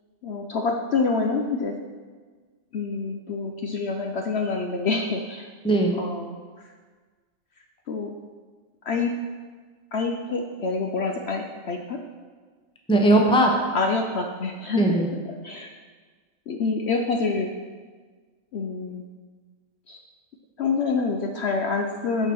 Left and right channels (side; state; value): both; normal; correlation 0.17